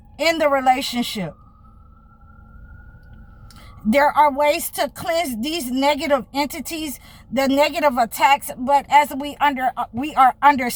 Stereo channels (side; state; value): both; identical; correlation 1.00